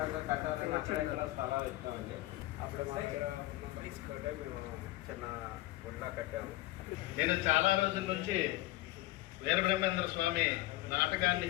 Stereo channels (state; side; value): quieter; right; 17.9 dB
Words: కట్టాలని అక్కడ స్థలాలు ఇచ్చామండి. అప్పుడు మా తీసుకుంటే మేము చిన్న గుడిలా కట్టాము. నేను చాలా రోజుల నుంచి వీరబ్రహ్మేంద్ర స్వామి నాటకాన్ని